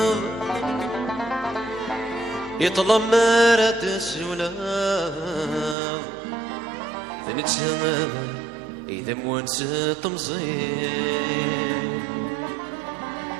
يطلب مرات السولاف ثنتسمى إذا موانس تمزين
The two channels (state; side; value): drops out; left; at 5.8 s